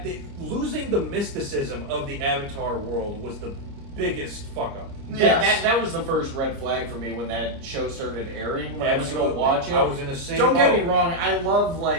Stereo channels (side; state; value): left; late; 29 ms